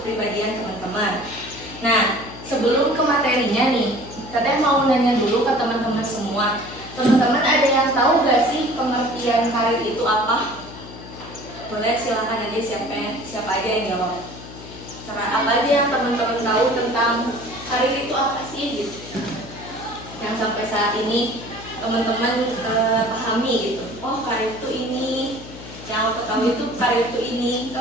teman-teman. Nah, sebelum ke materinya nih, Teteh mau nanya dulu ke teman-teman semua. Teman-teman ada yang tahu gak sih pengertian karir itu apa? Boleh silakan aja siapa aja yang jawab. Apa aja yang teman-teman tahu tentang karir itu apa sih gitu? Yang sampai saat ini teman-teman pahami gitu. Oh, karir itu ini. Yang aku tahu itu karir itu ini.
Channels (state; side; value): noise; left; hum, 15 dB below the sound